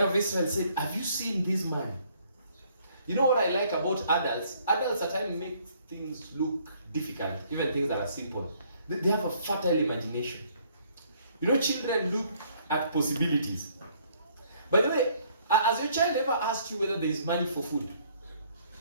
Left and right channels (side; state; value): both; inverted; correlation -0.63